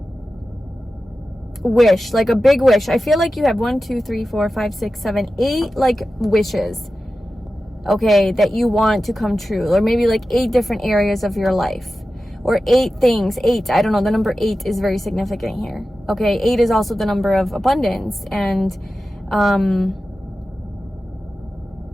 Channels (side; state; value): both; normal; correlation 0.93